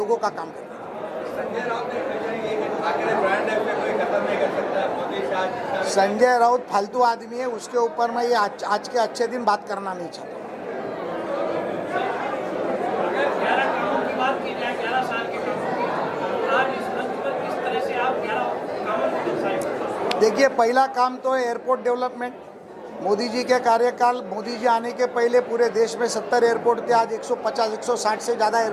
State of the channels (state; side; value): identical; both; correlation 1.00